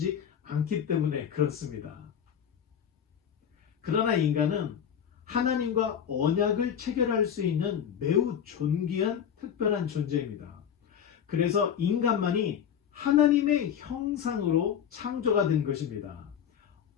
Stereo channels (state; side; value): quieter; right; 8.6 dB